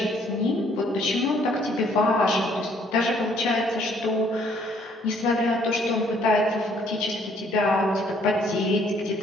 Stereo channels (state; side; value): normal; both; correlation 0.63